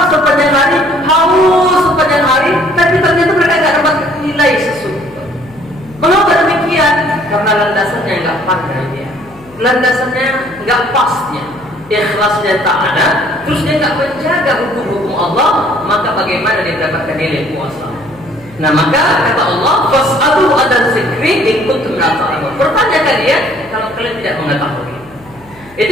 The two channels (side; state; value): left; noise; hum, 26 dB below the sound